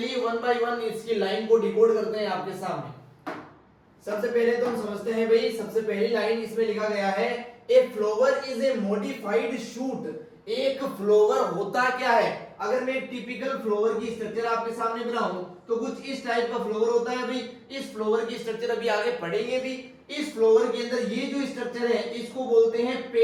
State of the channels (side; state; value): both; identical; correlation 1.00